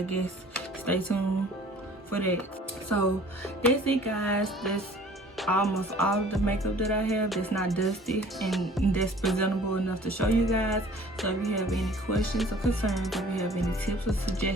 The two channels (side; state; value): both; normal; correlation 0.51